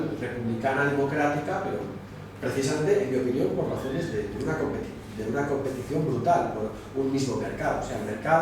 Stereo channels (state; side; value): identical; both; correlation 1.00